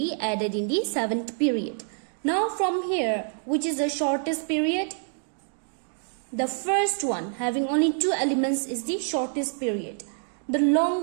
added in the 7th period. Now from here, which is the shortest period? The first one, having only 2 elements, is the shortest period. The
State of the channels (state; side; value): silent; left; 60 dB below the other